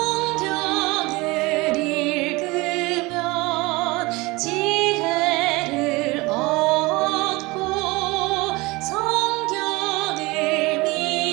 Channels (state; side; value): quieter; left; 23.3 dB